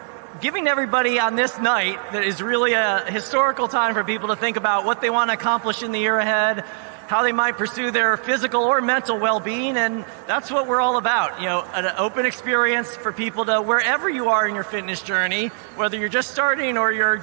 giving everybody on this night that is really a historical time for people to think about what they want to accomplish in the year ahead, how they might pursue their physical or mental well-being, and that's what we're all about. You know, an open experience for people to, wherever you are in your fitness journey, whether you're just starting or you're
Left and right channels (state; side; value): silent; left; 57 dB below the other